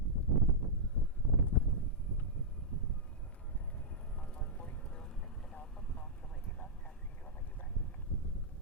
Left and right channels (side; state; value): both; normal; correlation -0.08